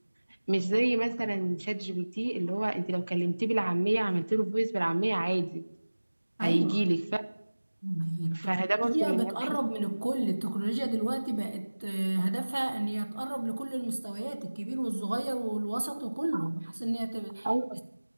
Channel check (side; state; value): both; inverted; correlation -1.00